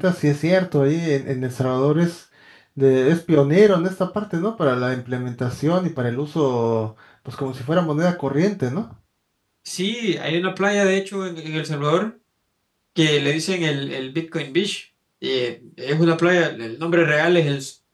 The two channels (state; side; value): identical; both; correlation 1.00